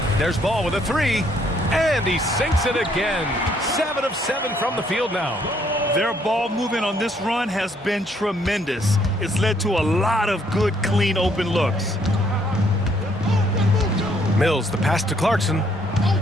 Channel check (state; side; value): normal; both; correlation 0.68